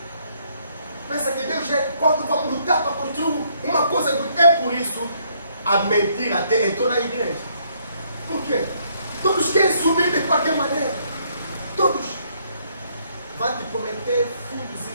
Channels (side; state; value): both; inverted; correlation -0.69